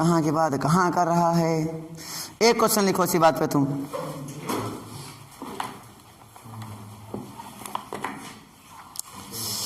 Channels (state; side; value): identical; both; correlation 1.00